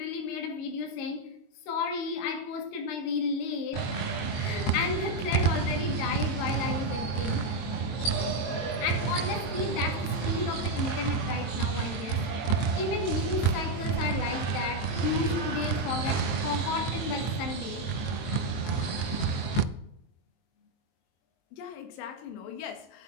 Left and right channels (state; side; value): late; right; 23 ms